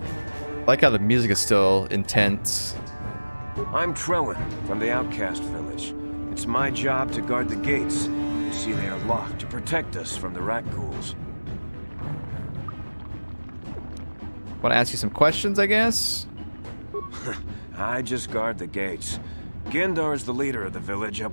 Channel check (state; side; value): inverted; both; correlation -1.00